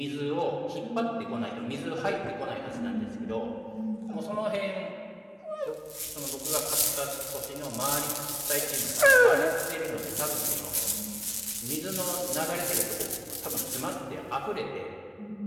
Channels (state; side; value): identical; both; correlation 1.00